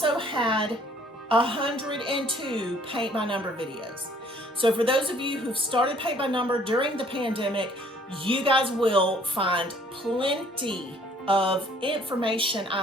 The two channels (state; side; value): normal; both; correlation 0.59